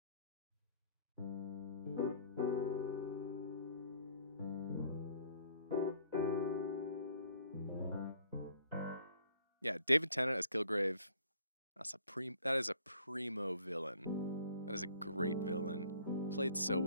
Yeah, David Tennant as Kilgrave. That is a primo villain. That is a great villain. Played so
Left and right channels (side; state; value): both; inverted; correlation -0.57